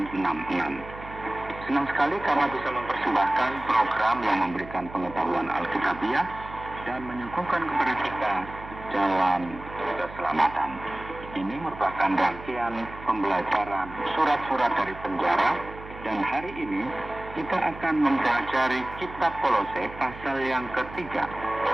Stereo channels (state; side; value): noise; right; hum, 15 dB below the sound